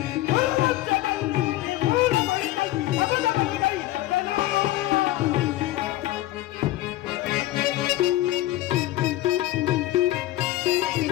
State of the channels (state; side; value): quieter; right; 15.8 dB